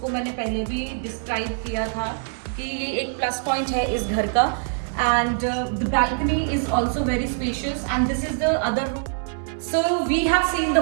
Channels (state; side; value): silent; left; digital silence